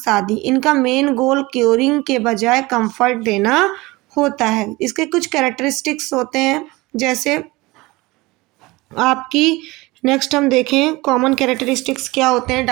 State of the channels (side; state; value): left; quieter; 21.7 dB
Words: आदि। इनका मेन गोल क्योरिंग के बजाय कंफर्ट देना होता है। इसके कुछ कैरेक्टरिस्टिक्स होते हैं, जैसे आपकी नेक्स्ट हम देखें कॉमन कैरेक्टरिस्टिक्स क्या होते हैं